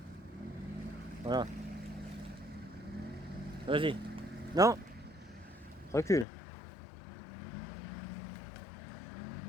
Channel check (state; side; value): drops out; right; at 6.2 s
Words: Voilà. Vas-y. Non. Recule.